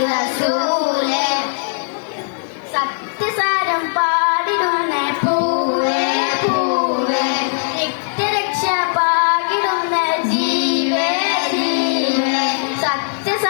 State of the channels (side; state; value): right; silent; digital silence